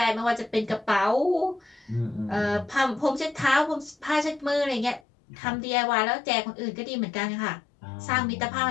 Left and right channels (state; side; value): drops out; right; at 5.0 s